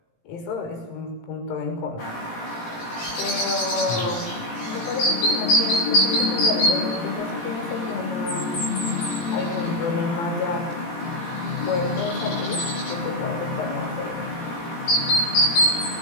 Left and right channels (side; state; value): right; late; 17 ms